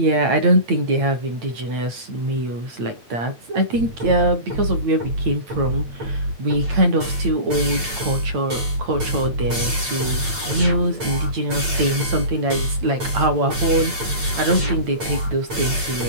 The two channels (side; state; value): left; late; 8.7 ms